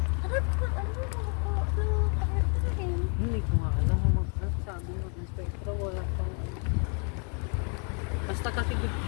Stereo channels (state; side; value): quieter; right; 39.7 dB